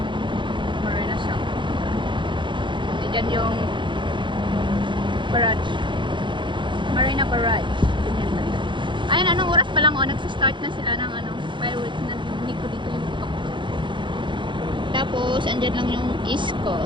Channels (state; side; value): late; left; 0.23 ms